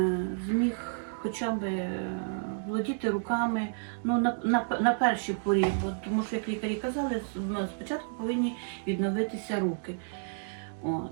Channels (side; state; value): left; silent; digital silence